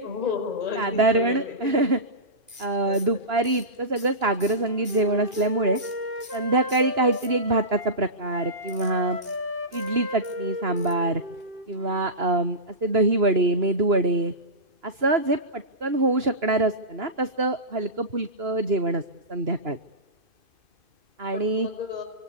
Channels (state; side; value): late; left; 2.9 ms